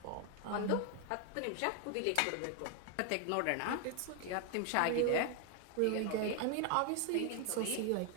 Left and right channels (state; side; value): different; both; correlation 0.01